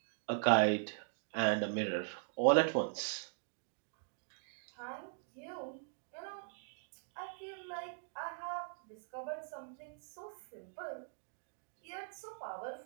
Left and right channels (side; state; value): left; silent; digital silence